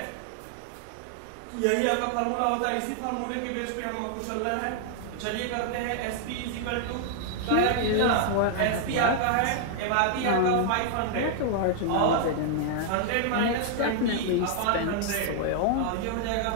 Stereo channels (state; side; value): different; both; correlation 0.00